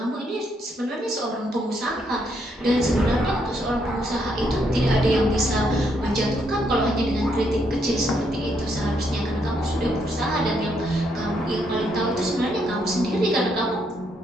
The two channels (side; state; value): both; normal; correlation 0.75